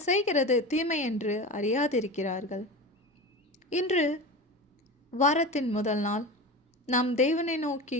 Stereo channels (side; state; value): both; normal; correlation 0.28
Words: செய்கிறது தீமை என்று அறியாதிருக்கிறார்கள். இன்று வாரத்தின் முதல் நாள். நாம் தேவனை